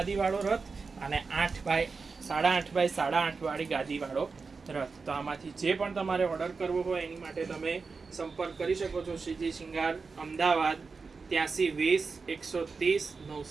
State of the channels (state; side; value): quieter; left; 4.6 dB